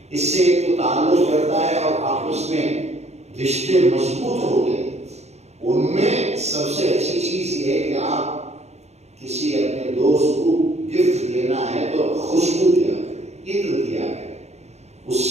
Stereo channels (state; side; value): late; left; 0.32 ms